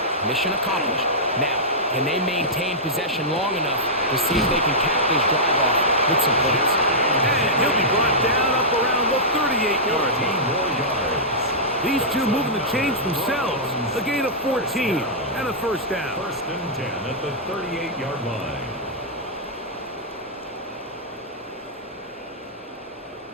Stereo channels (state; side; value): normal; both; correlation -0.11